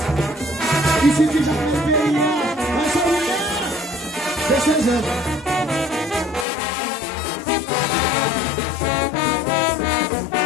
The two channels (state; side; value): drops out; right; at 6.5 s